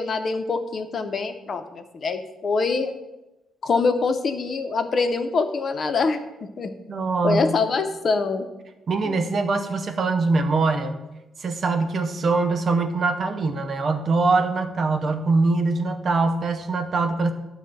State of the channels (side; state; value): both; normal; correlation 0.80